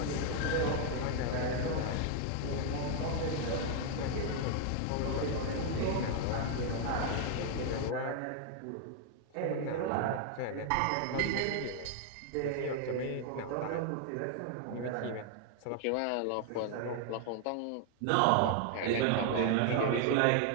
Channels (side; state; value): both; different; correlation 0.00